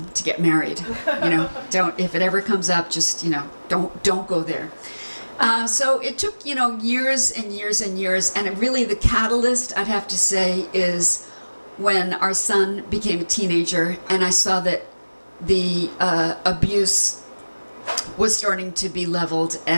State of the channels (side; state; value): both; inverted; correlation -1.00